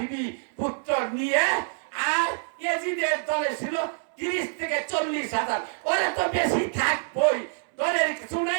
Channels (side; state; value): left; silent; digital silence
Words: পুত্র নিয়ে, আর ইয়াজিদের দলে ছিল ৩০ থেকে ৪০,০০০। ওরা তো বেশি থাকবই, দলের কিছু